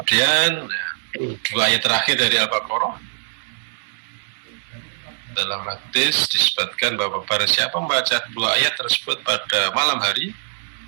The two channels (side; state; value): left; silent; digital silence